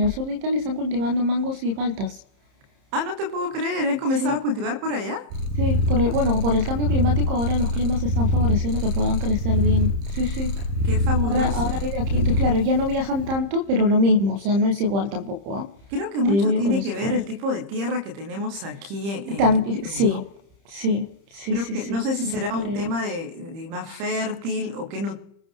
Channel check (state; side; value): late; left; 30 ms